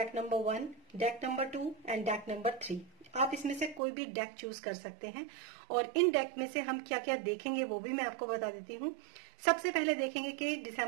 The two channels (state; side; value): drops out; left; at 3.8 s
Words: number 1, deck number 2 and deck number 3। आप इसमें से कोई भी डेक चूज कर सकते हैं। और इन डेक में से हम क्या क्या देखेंगे वो भी मैं आपको बता देती हूँ। सबसे पहले देखेंगे कि